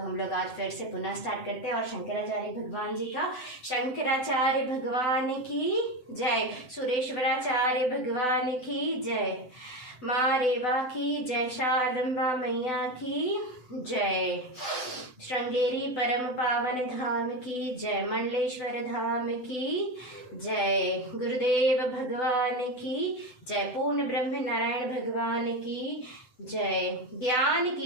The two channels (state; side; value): late; right; 8.0 ms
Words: लोग आज फिर से पुनः स्टार्ट करते हैं, और शंकराचार्य भगवान जी का, शंकराचार्य भगवान की जय, सुरेश्वराचार्य भगवान की जय, माँ रेवा की जय, शारदम्बा मैया की जय, श्रृंगेरी परम पावन धाम की जय, मंडलेश्वर धाम की जय, गुरुदेव भगवान की जय, पूर्ण ब्रह्म नारायण भगवान की जय, ज्ञान